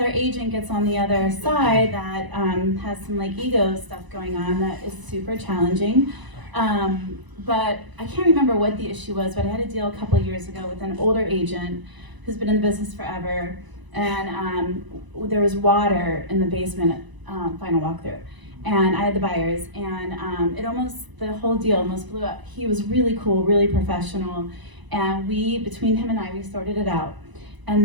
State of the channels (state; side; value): late; left; 1.0 ms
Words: agent gets on the other side that has some like ego stuff going on, that is super challenging. But I can't remember what the issue was, but I had a deal a couple of years ago with an older agent who's been in the business forever. And there was water in the basement, final walkthrough. And I had the buyers, and the whole deal almost blew up. He was really cool, really professional. And between him and I, we sorted it out.